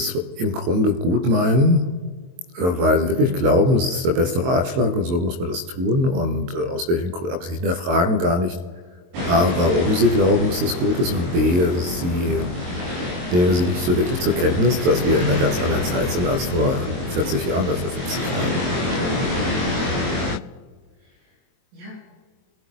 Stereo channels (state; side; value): late; left; 23 ms